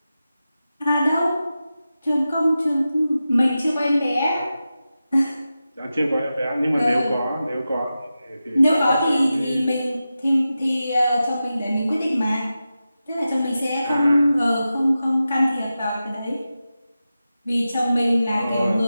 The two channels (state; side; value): inverted; both; correlation -0.92